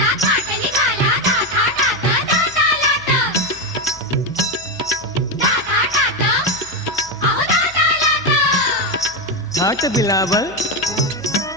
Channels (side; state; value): left; noise; hum, 23 dB below the sound